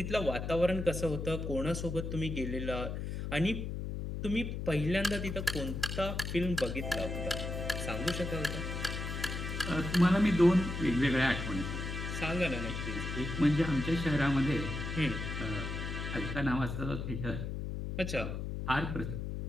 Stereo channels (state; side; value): noise; left; hum, 4 dB below the sound